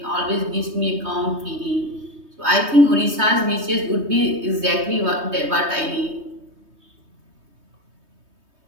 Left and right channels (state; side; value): late; left; 3.2 ms